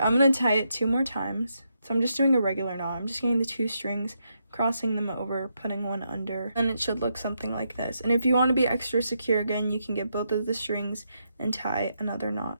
I'm going to tie it 2 more times. So I'm just doing a regular knot. I'm just getting the 2 strings, crossing them over, putting one under, and it should look something like this. And if you want to be extra secure again, you can get both of the strings and tie another knot.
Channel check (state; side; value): inverted; both; correlation -0.81